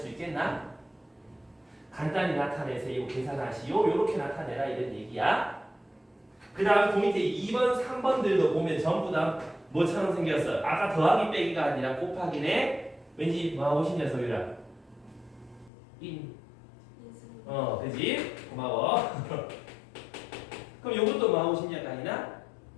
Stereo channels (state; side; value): drops out; right; at 15.7 s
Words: 있겠나? 간단히 나타내세요. 계산하시오. 이렇게 나타내라 이런 얘기야. 그 다음 그 밑에 2번, 3번들도 보면 전부 다 뭐처럼 생겼어? 아까 더하기 빼기가 아니라 곱하기네. 왠지 뭐하고 싶냐 소유라? 그지? 고마워. 그럼 요것도 뭐하고 싶냐 아니나?